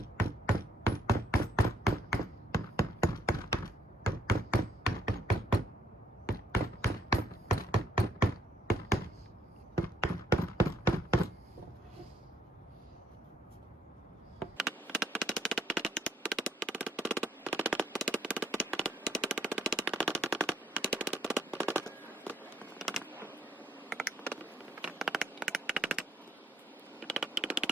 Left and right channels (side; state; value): both; normal; correlation 0.68